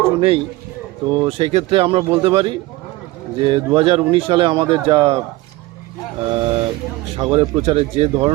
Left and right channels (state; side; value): quieter; left; 19.5 dB